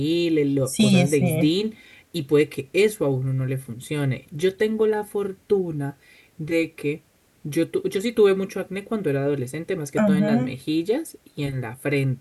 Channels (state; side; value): identical; both; correlation 1.00